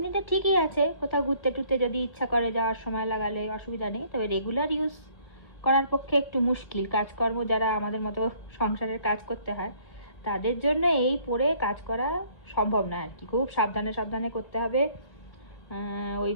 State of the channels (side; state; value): right; late; 1.9 ms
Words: ঠিকই আছে, কোথাও ঘুরতে টুরতে যদি ইচ্ছা করে যাওয়ার সময় লাগালে অসুবিধা নেই, তবে রেগুলার ইউজ করার পক্ষে একটু মুশকিল। কাজকর্ম যারা আমাদের মতো সংসারের কাজ করতে হয় তাদের জন্য এই পরে কাজ করা সম্ভব না আর কি, খুব সাবধানে সাবধানে করতে হবে,